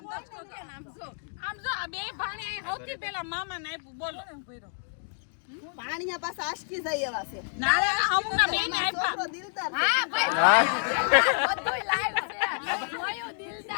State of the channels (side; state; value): right; silent; 59 dB below the other